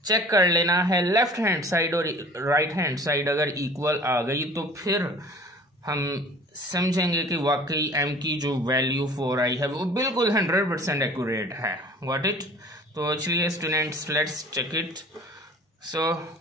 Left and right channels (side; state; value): both; normal; correlation 0.46